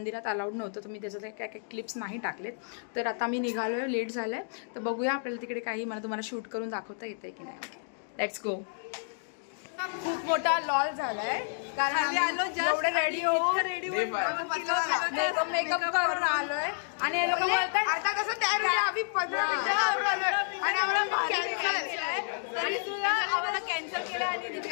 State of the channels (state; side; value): silent; right; digital silence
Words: अलाउड नव्हतं, तर मी त्याच्यात काय क्लिप्स नाही टाकलेत. तर आता मी निघालो आहे, लेट झालं आहे. तर बघूया आपल्याला तिकडे काही मला तुम्हाला शूट करून दाखवता येते की नाही. Let's go. खूप मोठा लॉल झालाय कारण एवढे रेडी होऊन मेकअप करून आलोय आणि हे लोक बोलतात आता कसं तयार होईल आम्ही 15 मिनिटं आणि आम्हाला कॅन्सल केलं आणि